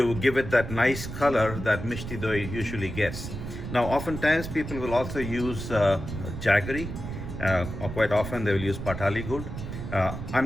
give it that nice color that Mishti Doi usually gets. Now oftentimes people will also use jaggery, or quite often they will use patali gur. I'm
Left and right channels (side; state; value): right; noise; rumble, 7 dB below the sound